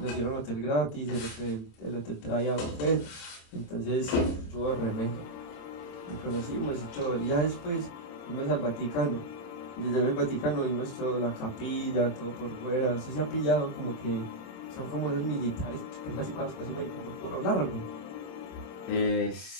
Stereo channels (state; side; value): late; right; 27 ms